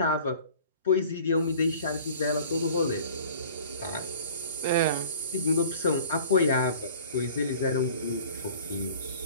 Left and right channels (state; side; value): inverted; both; correlation -0.46